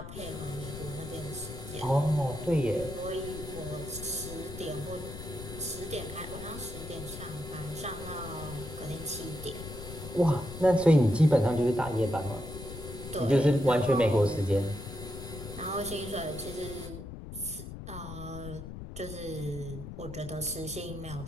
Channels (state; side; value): noise; left; rumble, 10 dB below the sound